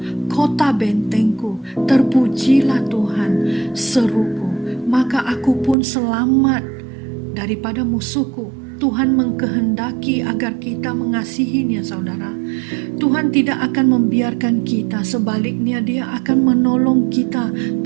kota bentengku. Terpujilah Tuhan, seruku, maka aku pun selamat daripada musuhku. Tuhan mengkehendaki agar kita mengasihinya, saudara. Tuhan tidak akan membiarkan kita, sebaliknya Dia akan menolong kita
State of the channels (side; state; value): left; drops out; at 5.8 s